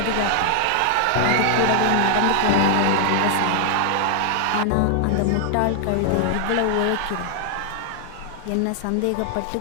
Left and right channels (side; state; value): both; different; correlation 0.00